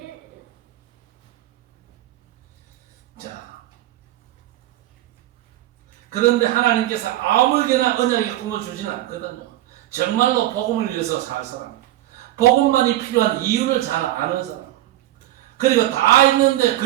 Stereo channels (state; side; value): quieter; left; 14.7 dB